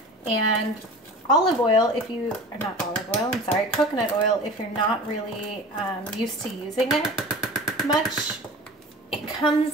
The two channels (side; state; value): both; normal; correlation 0.38